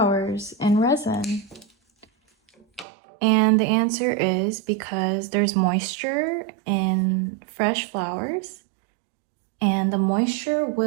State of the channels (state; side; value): drops out; left; at 2.9 s